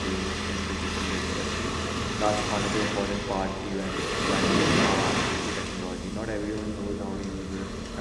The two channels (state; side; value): identical; both; correlation 1.00